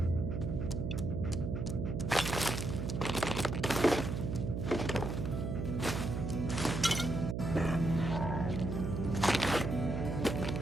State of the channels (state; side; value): noise; right; hum, 2 dB below the sound